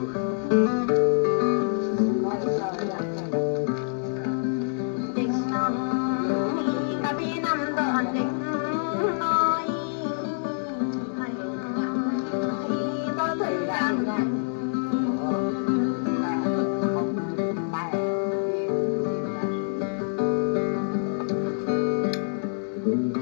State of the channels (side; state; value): right; silent; digital silence